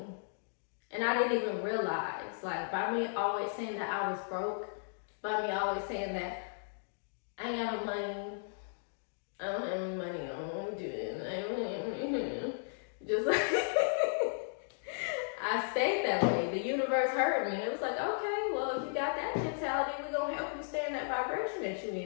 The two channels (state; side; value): silent; right; digital silence